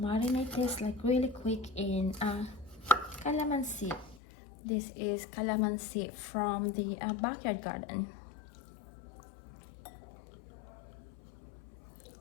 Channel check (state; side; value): drops out; right; at 4.2 s